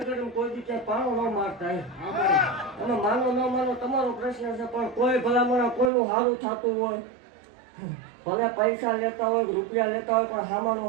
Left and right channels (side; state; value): left; drops out; at 5.9 s